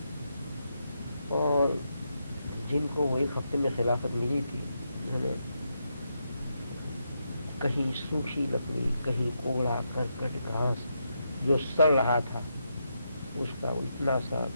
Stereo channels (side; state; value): both; inverted; correlation -0.82